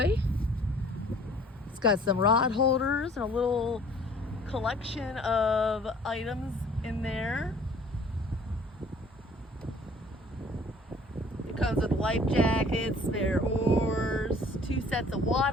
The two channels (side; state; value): both; normal; correlation 0.53